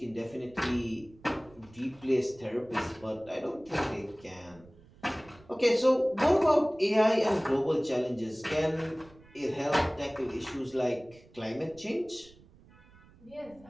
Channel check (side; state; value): right; noise; rumble, 25 dB below the sound